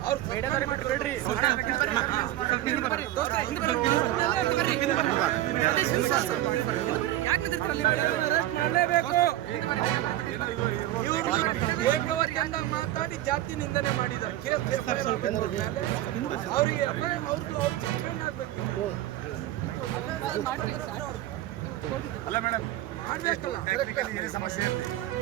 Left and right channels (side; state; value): left; quieter; 14.4 dB